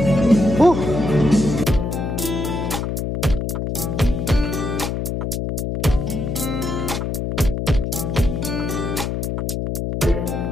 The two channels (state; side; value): noise; left; hum, 2 dB below the sound